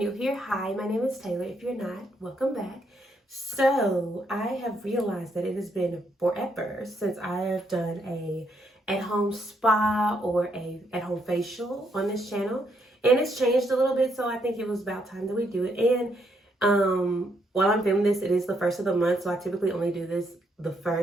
here, hi, my name is Taylor. If you're not, welcome back. So I have realized that it has been forever since I have done a at-home spa or a at-home facial on this channel, and it's changed a little bit, so I think it was about time that we do it. And while I'm filming this, it is the first of the month, so I typically only do this the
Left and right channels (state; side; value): normal; both; correlation 0.75